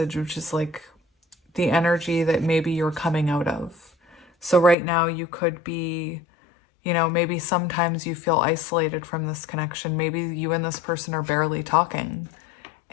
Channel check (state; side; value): drops out; right; at 4.8 s